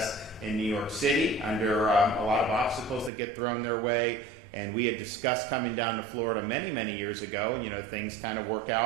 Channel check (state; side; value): drops out; left; at 3.1 s